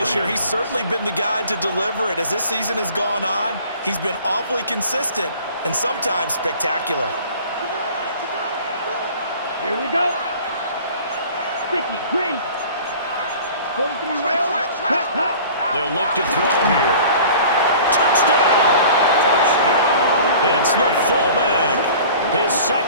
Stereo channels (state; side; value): inverted; both; correlation -0.45